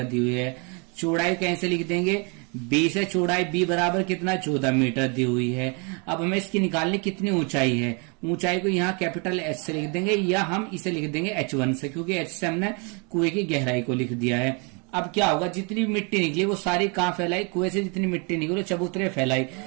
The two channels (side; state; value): left; quieter; 33.7 dB